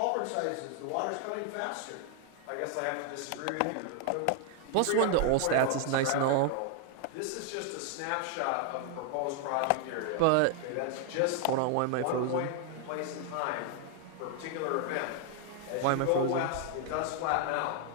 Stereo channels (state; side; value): different; both; correlation 0.00